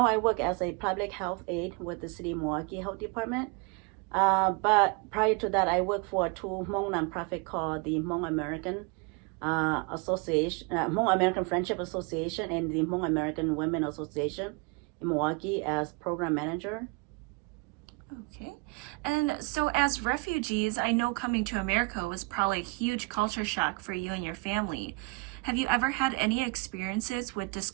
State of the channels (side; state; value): left; quieter; 28.1 dB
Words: I work as a public health aide with the city Milwaukee Health Department. But prior to that, I worked for two Hmong nonprofit called the Hmong American Association, Hmong American Friendship Association, and the Hmong American Women Association in Milwaukee as program manager. Okay, and so as refugees, I know coming to America was probably a huge culture shock for you and your family. Have you ever had any experiences with